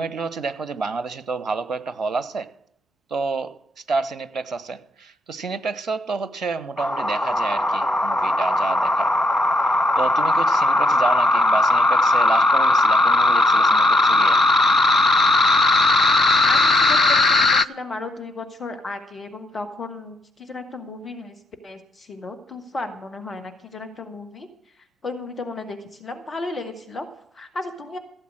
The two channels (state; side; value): normal; both; correlation 0.73